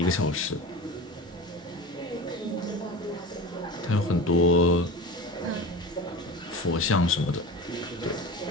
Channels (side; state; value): both; normal; correlation 0.33